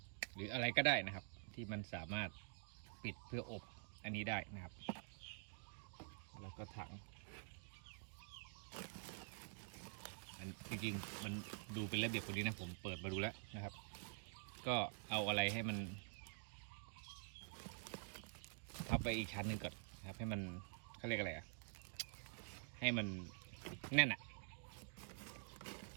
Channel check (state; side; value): silent; left; digital silence